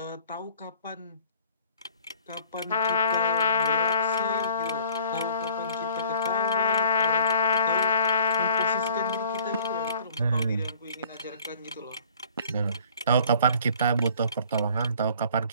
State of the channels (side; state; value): both; inverted; correlation -0.54